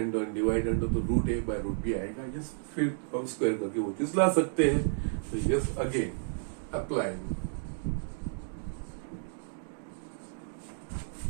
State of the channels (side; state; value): left; silent; digital silence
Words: और dividend तो root A by root B आएगा। Yes फिर हम square करके वो चीज ला सकते हैं। तो yes again applying